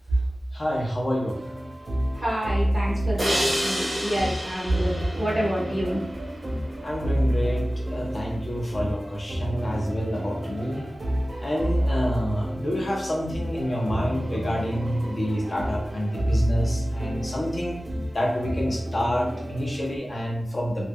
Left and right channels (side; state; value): both; normal; correlation 0.96